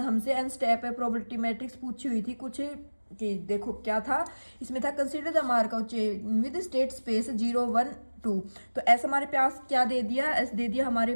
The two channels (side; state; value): both; inverted; correlation -1.00